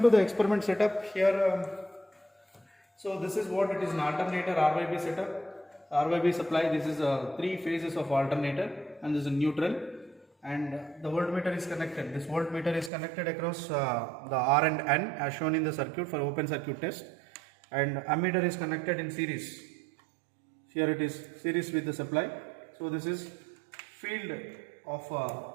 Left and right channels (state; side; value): drops out; left; at 12.9 s